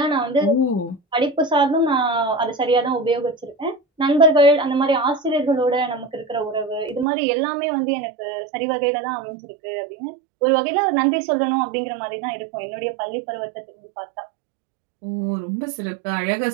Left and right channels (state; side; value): drops out; left; at 7.1 s